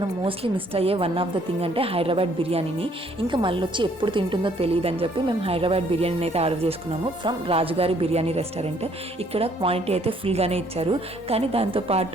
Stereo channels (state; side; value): normal; both; correlation 0.64